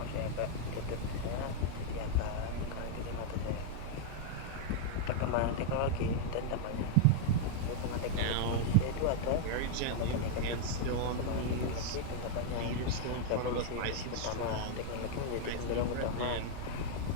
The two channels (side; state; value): both; different; correlation 0.00